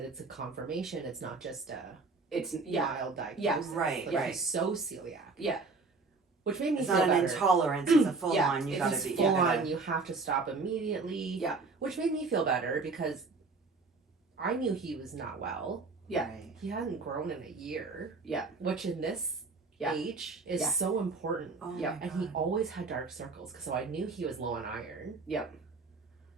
it's a confirmation. It's not just a It's mild diagnosis. Yeah, right, Like right. he's so celiac. Yeah. Which made me It's feel not an better. intolerance, it's a full Yeah, on. You If gotta it's be full gotta- on, you have to stop immediately. Yeah. Which made me feel better because I knew he was not well. Yeah. Right. He hadn't grown in a year. Yeah. Which in this Yeah. age is Yeah. so important. Oh Yeah. my And he God. always had dark circles, so I knew he was low on iron. Yep.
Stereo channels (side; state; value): left; quieter; 4.0 dB